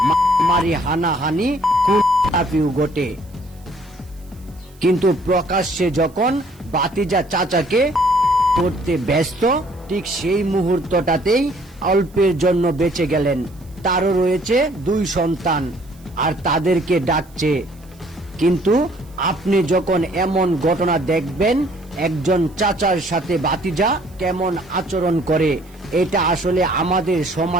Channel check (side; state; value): right; noise; hiss, 29 dB below the sound